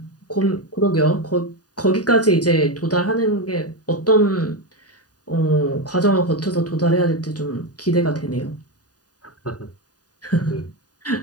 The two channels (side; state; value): right; late; 0.68 ms